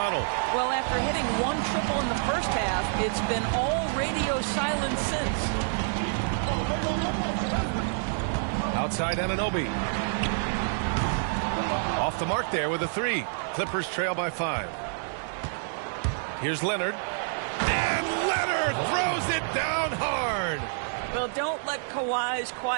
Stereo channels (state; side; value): silent; left; digital silence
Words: Well, after hitting 1 triple in the first half, it's been all radio silence since. Outside Anunoby. Off the mark there with a 3. Clippers trail by 5. Here's Leonard. And Leonard throws it down hard. Well, don't let Kawhi's